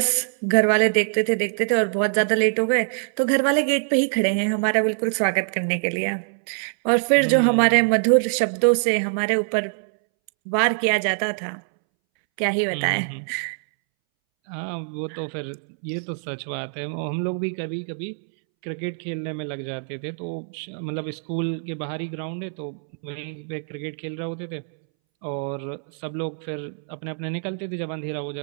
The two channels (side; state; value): left; silent; 63 dB below the other